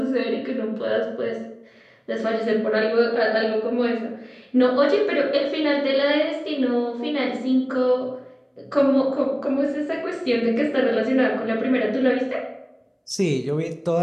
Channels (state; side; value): identical; both; correlation 1.00